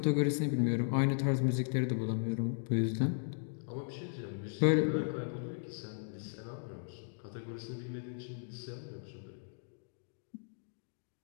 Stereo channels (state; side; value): silent; right; digital silence